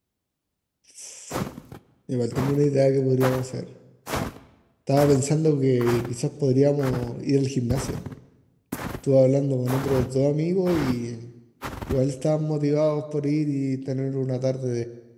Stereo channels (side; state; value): both; identical; correlation 1.00